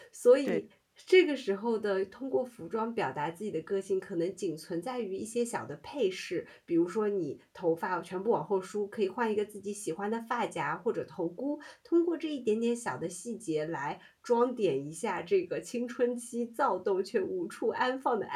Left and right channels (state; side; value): identical; both; correlation 1.00